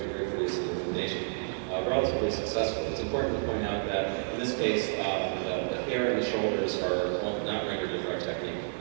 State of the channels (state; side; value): silent; left; 58 dB below the other